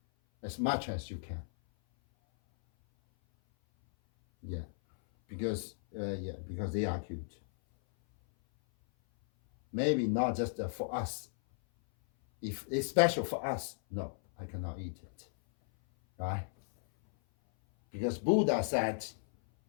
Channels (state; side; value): silent; right; 55 dB below the other